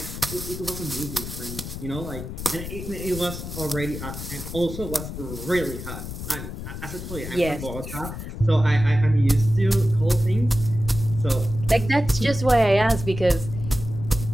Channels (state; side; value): noise; left; rumble, 8 dB below the sound